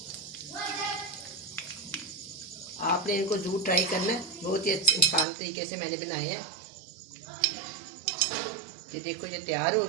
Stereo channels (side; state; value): left; drops out; at 5.2 s